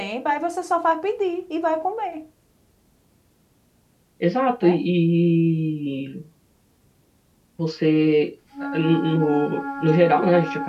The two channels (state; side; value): identical; both; correlation 1.00